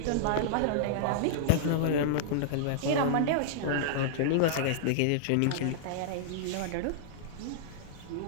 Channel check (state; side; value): different; both; correlation -0.02